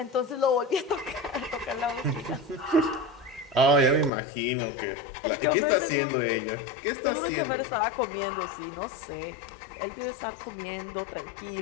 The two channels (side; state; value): right; drops out; at 4.1 s